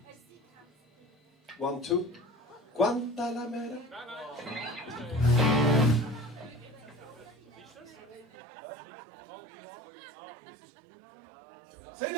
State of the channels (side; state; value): left; drops out; at 8.2 s